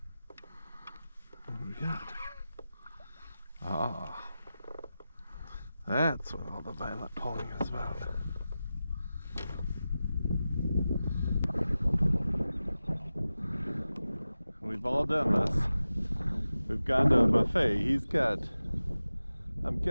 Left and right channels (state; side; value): inverted; both; correlation -0.94